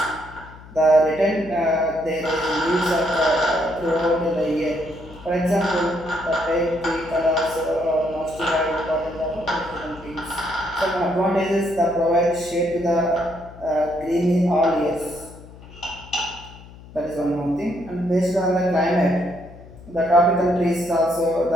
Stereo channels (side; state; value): left; noise; hum, 19 dB below the sound